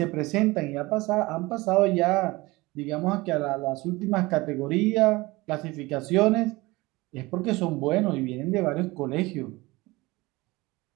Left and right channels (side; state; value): left; quieter; 21.7 dB